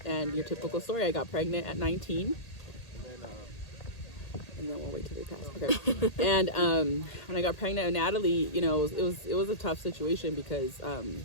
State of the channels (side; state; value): right; late; 1.8 ms